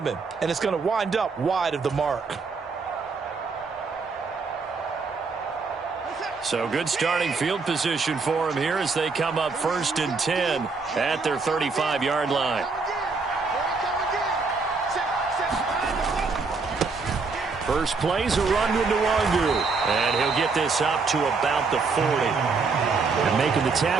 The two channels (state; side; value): quieter; left; 4.5 dB